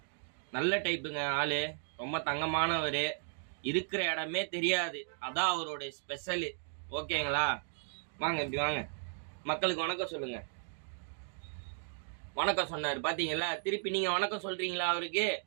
நல்ல டைப்புங்க. ஆளு ரொம்ப தங்கமானவர். இருக்கிற இடமே தெரியாது, அதான் அவரோட ஸ்பெஷலு. ஓகேங்களா? வாங்க, இப்படி வாங்க. மக்களுக்கு வணக்கம் சொல்லுங்க. வணக்கம் சொன்னார் பாத்தீங்களா? திருப்பி நீங்க வணக்கம் சொல்றீங்களா அவருக்கு?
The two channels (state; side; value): silent; left; digital silence